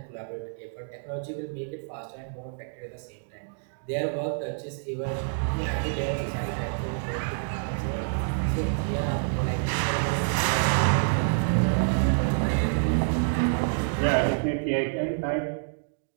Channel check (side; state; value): left; silent; digital silence